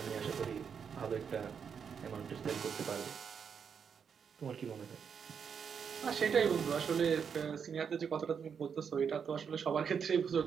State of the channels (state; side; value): quieter; left; 6.9 dB